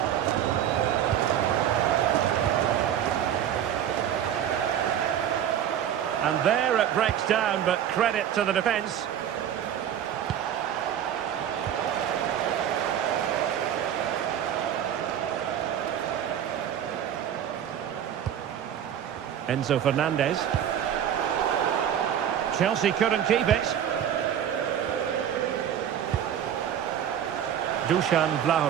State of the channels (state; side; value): quieter; left; 9.8 dB